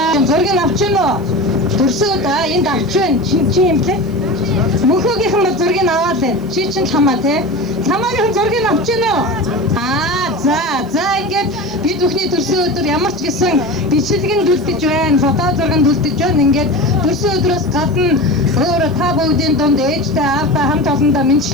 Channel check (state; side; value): noise; left; hiss, 29 dB below the sound